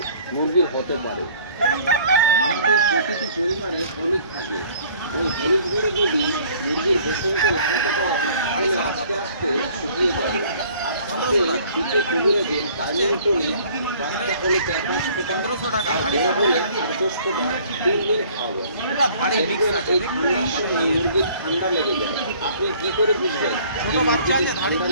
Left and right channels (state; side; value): inverted; both; correlation -0.54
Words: মুরগির হতে পারে। আমাদের প্রতিটি পরিবারে হলুদ থাকে। ওই হলুদগুলো যদি মুরগির বসন্ত লাগাতে পারেন তাহলে আস্তে আস্তে শুকিয়ে যাবে। আর সাথে শীতে কবিরাজের কাজের টনে বাচ্চা হলে 4-5 ফোঁটা, 1500 টাকা। আর বড় হলে 8-10 ফোঁটা 3 দিন খাওয়াবেন। এই ঠান্ডার সময় মুরগির ঠান্ডা লেগে যায়। আপনি কি করে বুঝবেন যে মুরগিতে ঠান্ডা